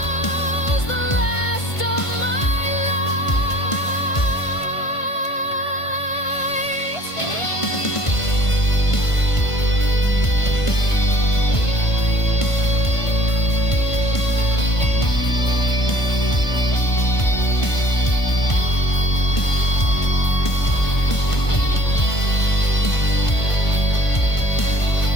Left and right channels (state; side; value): late; right; 1.5 ms